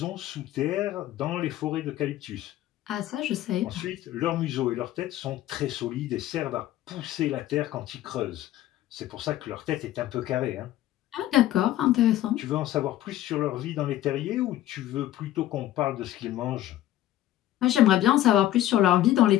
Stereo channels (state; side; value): quieter; right; 13.7 dB